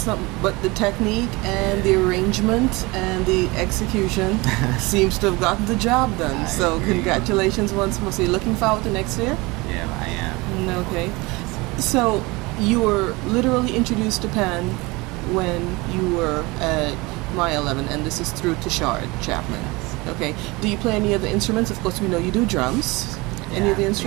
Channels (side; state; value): left; quieter; 24.1 dB